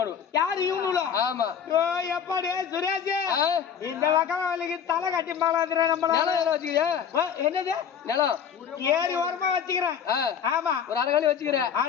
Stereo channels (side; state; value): right; quieter; 7.8 dB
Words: யாரு இவனுல? ஆமா. எப்பாடி சுரேஷ் இந்த வக்கவலுக்கு தலை கட்டி மாலாதுற நம்மள. நிலம் வச்சுக்கிறியா? என்னது நிலம்? ஏரி ஓரமா வச்சுக்கிறேன். ஆமா. ஒரு அரைகாலி வச்சுக்கிறேன்.